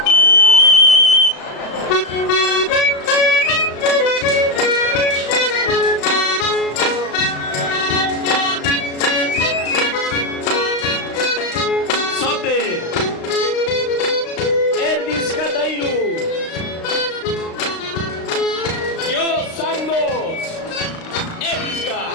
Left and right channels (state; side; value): late; right; 35 ms